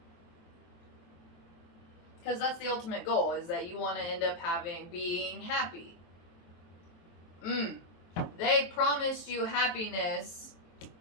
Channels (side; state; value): right; late; 23 ms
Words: Because that's the ultimate goal, is that you want to end up being happy. They promised you happiness,